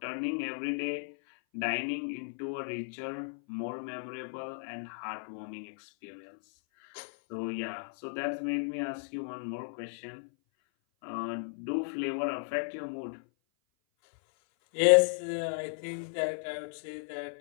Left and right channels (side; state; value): right; silent; 55 dB below the other